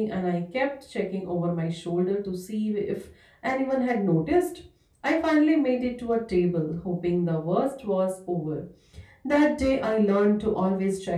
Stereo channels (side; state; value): both; identical; correlation 1.00